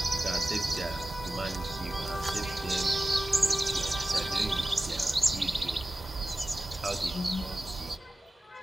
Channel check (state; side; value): normal; both; correlation 0.95